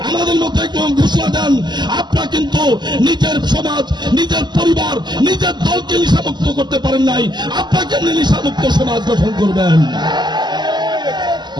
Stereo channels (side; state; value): left; late; 0.21 ms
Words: আমাদের মধ্যে একদম ঘোষণা দেন, আপনারা কিন্তু নিজের সমাজ, নিজের পরিবার, নিজের দলকে নিশামুক্ত করতে পারেন নাই, আপনাকে নিশামুক্ত সমাজ গঠন করবেন।